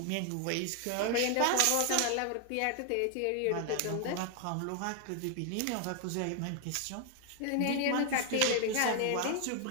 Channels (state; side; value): different; both; correlation 0.00